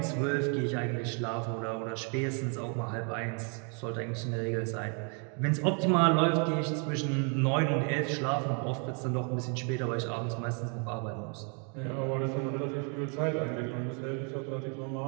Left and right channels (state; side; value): quieter; left; 38.2 dB